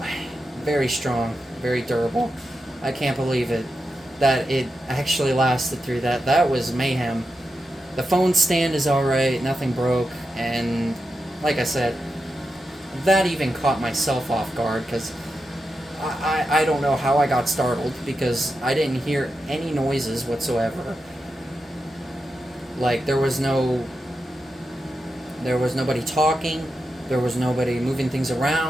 very strong, very durable. I can't believe it, that it actually lasted through that. That was mayhem. The phone stand is alright, nothing broke, and like I said, that even caught myself off guard, because I don't know how I got startled, because I didn't hear any noises whatsoever. Like, there was nobody talking, there was nobody moving things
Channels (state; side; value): normal; both; correlation 0.88